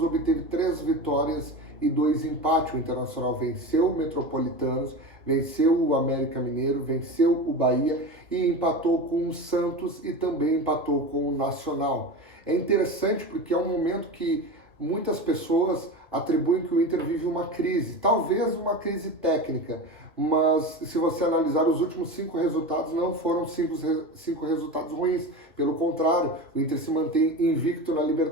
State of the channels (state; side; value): normal; both; correlation 0.27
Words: obteve 3 vitórias e 2 empates. O Internacional venceu o Metropolitanos, venceu o América Mineiro, venceu o Bahia e empatou com o Santos e também empatou com o Nacional. É interessante porque é um momento que muitas pessoas atribuem que o Inter vive uma crise, talvez uma crise técnica, mas se você analisar os últimos 5 resultados, não foram 5 resultados ruins. Pelo contrário, o Inter se mantém invicto na